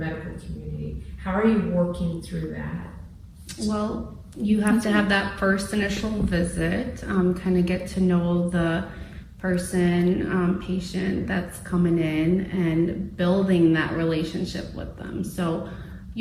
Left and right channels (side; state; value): both; identical; correlation 1.00